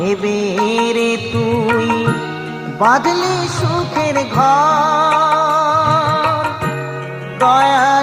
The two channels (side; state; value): both; identical; correlation 1.00